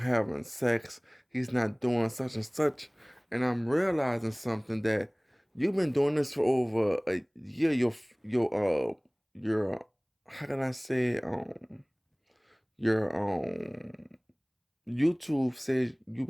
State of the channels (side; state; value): both; identical; correlation 1.00